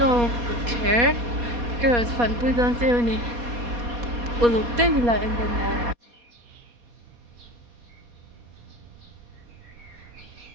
care cái phần quy đơn siêu này của lục tên là em bên này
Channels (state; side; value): late; left; 4.2 ms